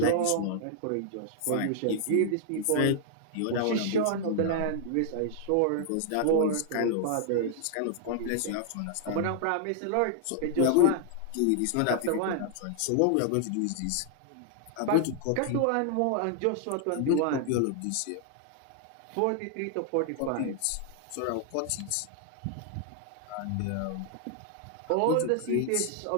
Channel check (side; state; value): both; different; correlation -0.01